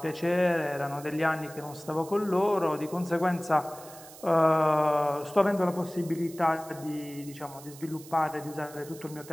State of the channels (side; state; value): right; noise; hiss, 18 dB below the sound